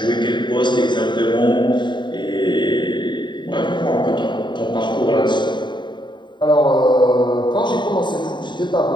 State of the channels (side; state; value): right; late; 0.22 ms